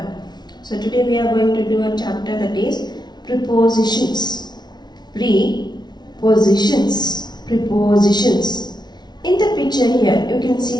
So today we are going to do a chapter that is prepositions. Prepositions. Prepositions. In the picture here, you can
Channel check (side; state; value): right; late; 0.20 ms